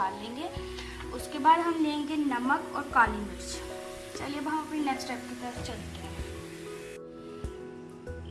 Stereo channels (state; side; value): identical; both; correlation 1.00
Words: लेंगे। उसके बाद हम लेंगे नमक और काली मिर्च। चलिए अब हम अपनी नेक्स्ट स्टेप की तरफ चलते हैं।